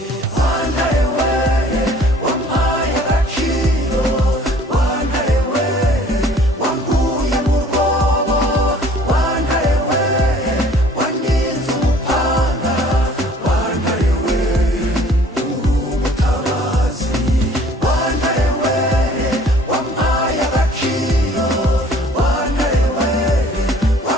Wantare we wampaye agaciro, wantare we wankuye mu rwobo, wantare we waninze umupanga, wantare we uri umutabazi. Wantare we wampaye agaciro, wantare we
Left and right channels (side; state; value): both; normal; correlation 0.54